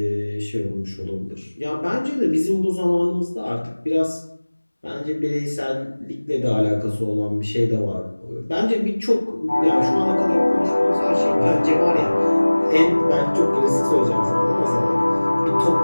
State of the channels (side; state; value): both; inverted; correlation -1.00